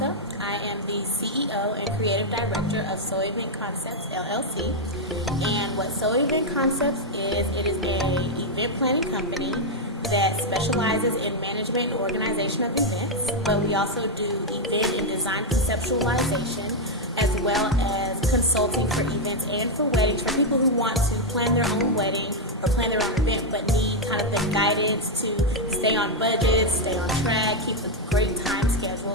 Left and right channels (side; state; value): both; normal; correlation 0.01